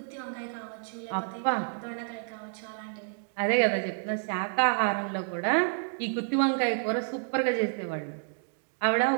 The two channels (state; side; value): silent; left; digital silence